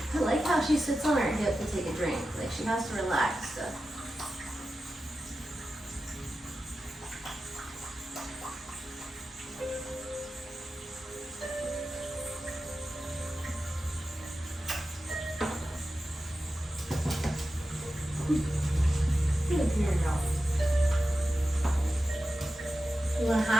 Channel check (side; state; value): both; normal; correlation 0.92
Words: I like how she sits on her hip to take a drink. Like she has to relax. So. Good girl. You want to